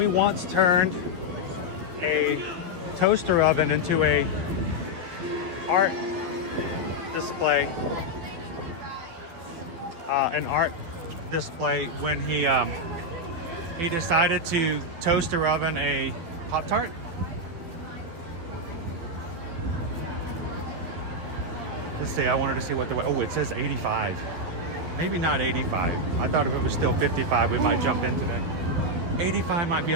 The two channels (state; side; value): late; left; 12 ms